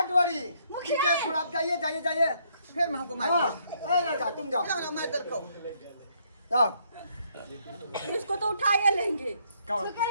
वरी ठीक है थोड़ा आप जाइए फिर मैं हमको मार तुम जाओ मैं इधर को जाओ इसको तो उठाए लेंगे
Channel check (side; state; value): both; inverted; correlation -0.70